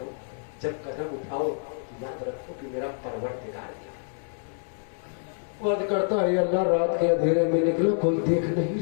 जब कदम उठाओ याद रखो कि मेरा परवरदिगार वाद करता है, अल्लाह रात के अंधेरे में निकला, कोई देख नहीं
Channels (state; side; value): silent; right; 60 dB below the other